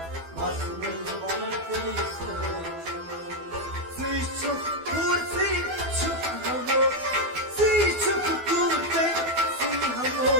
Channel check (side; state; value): left; late; 12 ms